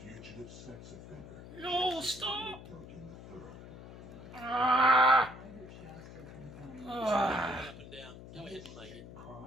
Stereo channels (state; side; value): noise; left; hum, 15 dB below the sound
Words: sex offender. No, Jessica stop! Duncan III. Ah! Ah! Up and down. Go ahead and make it.